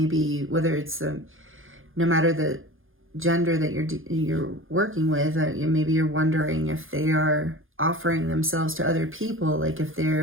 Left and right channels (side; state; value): left; late; 0.59 ms